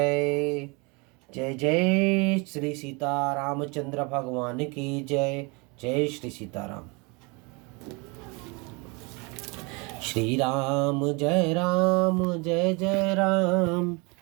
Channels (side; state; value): left; quieter; 29.4 dB